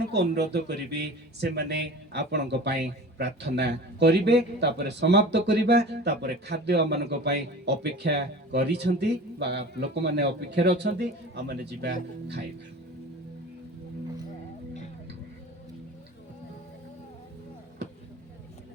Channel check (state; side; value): normal; both; correlation 0.38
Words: को अनुरोध करी से माने आपण प्रार्थना करिवे तापर समाप्त करिबा तापर खाद्य मान अपेक्षा करिसंती बा लोक माने अपेक्षा रे अछंती आ माने जिबा खाइबा